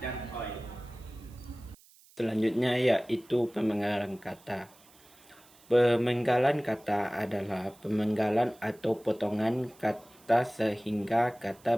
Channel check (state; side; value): noise; right; hiss, 27 dB below the sound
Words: OI. Selanjutnya yaitu pemenggalan kata. Pemenggalan kata adalah pemenggalan atau potongan kata sehingga kata